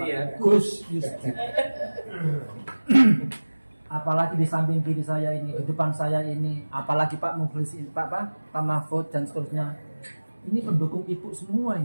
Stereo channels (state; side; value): inverted; both; correlation -1.00